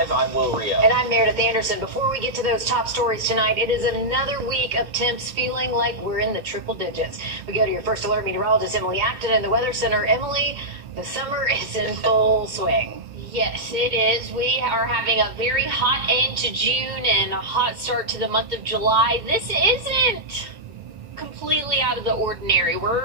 I'm Wrdw. And I'm Meredith Anderson. Before we get to those top stories tonight, it is another week of temps feeling like we're in the triple digits. We go to your first alert meteorologist, Emily Acton, in the Weather Center. Emily, the summer is in full swing. Yes, it is. We are having a very hot end to June and a hot start to the month of July. This isn't completely out of the ordinary.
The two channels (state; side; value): late; left; 2.2 ms